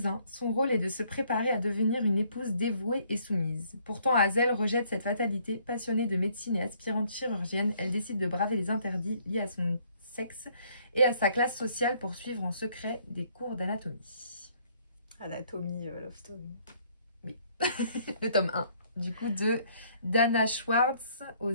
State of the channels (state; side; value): inverted; both; correlation -0.64